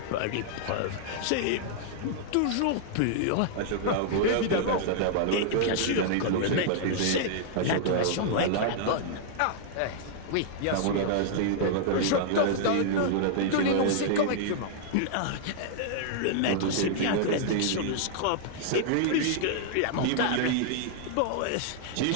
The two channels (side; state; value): both; different; correlation -0.01